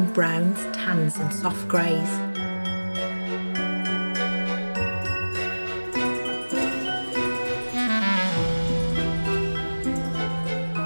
browns, tans and soft greys.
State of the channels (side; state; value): both; inverted; correlation -1.00